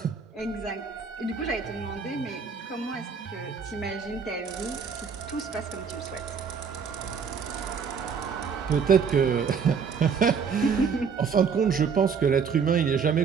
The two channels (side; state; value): left; quieter; 6.1 dB